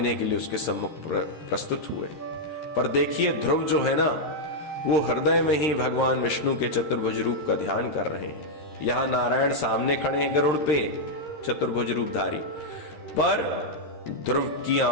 के लिए उसके सम्मुख प्रस्तुत हुए। पर देखिए, ध्रुव जो है ना, वो हृदय में ही भगवान विष्णु के चतुर्भुज रूप का ध्यान कर रहे हैं। यहां नारायण सामने खड़े हैं गरुड़ पे, चतुर्भुज रूपधारी, पर ध्रुव की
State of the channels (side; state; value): right; late; 13 ms